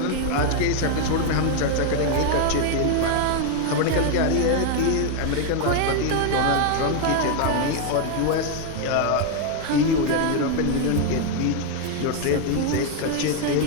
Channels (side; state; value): both; different; correlation 0.01